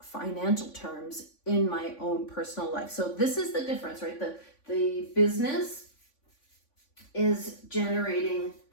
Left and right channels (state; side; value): late; right; 3.5 ms